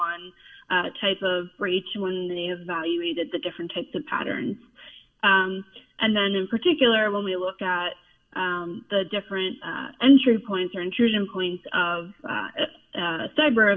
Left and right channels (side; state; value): both; identical; correlation 1.00